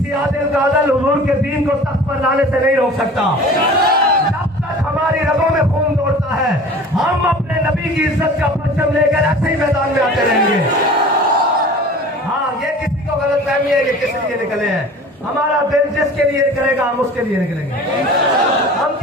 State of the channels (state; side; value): normal; both; correlation 0.42